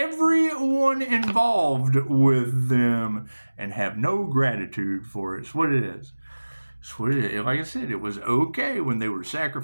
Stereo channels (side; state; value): both; inverted; correlation -1.00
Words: involved with them and have no gratitude for it. That's what it is. Like I said, it was okay when they were